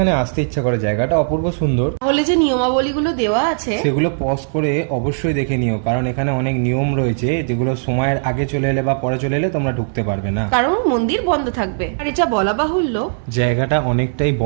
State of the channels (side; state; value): left; silent; digital silence